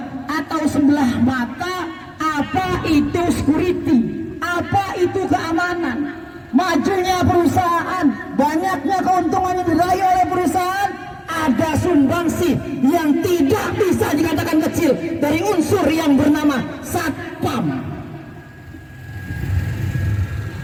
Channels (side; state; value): both; identical; correlation 1.00